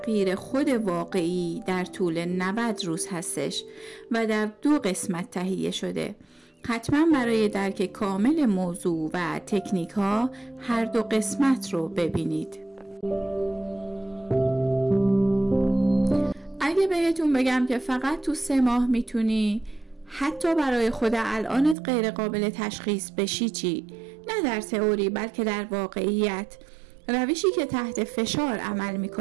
خود واقعی در طول 90 روز هستش و در 2 قسمت تهیه شده. حتما برای درک کامل موضوع و تکنیک ها هر 2 قسمت رو ببینید. اگه بهتون بگم که فقط تو 3 ماه میتونی حتی برای خود الانت غیر قابل تشخیص بشی چی؟ نه در تئوری بلکه در واقعیت، روشی که تحت فشار عمل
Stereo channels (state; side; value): drops out; left; at 21.8 s